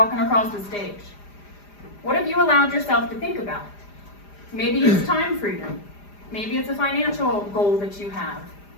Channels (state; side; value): late; right; 4.9 ms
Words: across the stage. What have you allowed yourself to think about? Maybe it's time freedom. Maybe it's a financial goal that you have.